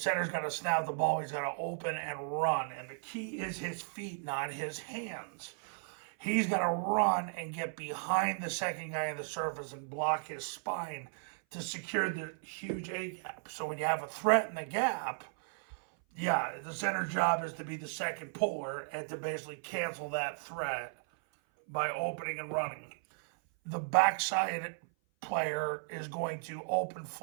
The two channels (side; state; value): left; silent; 54 dB below the other